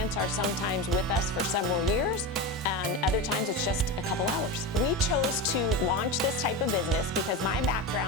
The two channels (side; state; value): both; normal; correlation 0.20